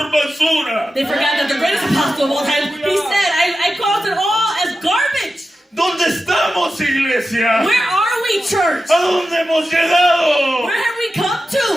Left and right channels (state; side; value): normal; both; correlation 0.92